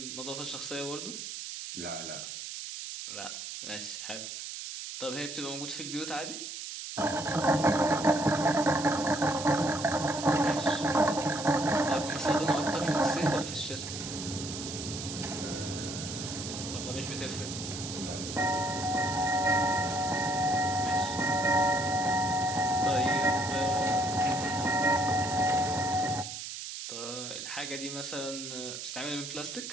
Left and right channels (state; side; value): noise; right; hiss, 8 dB below the sound